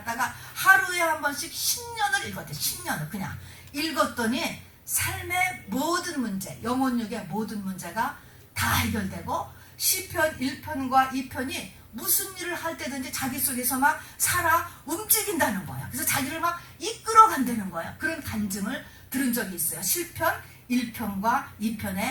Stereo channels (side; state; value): both; identical; correlation 1.00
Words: 하루에 한 번씩 10년을 읽었대. 10년을 그냥 읽었더니 삶의 모든 문제, 영혼력의 모든 문제가 다 해결되고 시편 1편과 2편이 무슨 일을 할 때든지 자기 속에서 막 살아 움직인다는 거야. 그래서 자기를 막 이끌어 간다는 거야. 그런 간증을 들은 적이 있어요. 시편 1편과